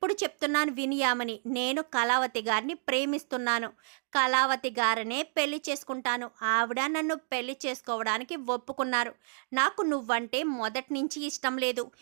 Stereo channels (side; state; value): left; silent; digital silence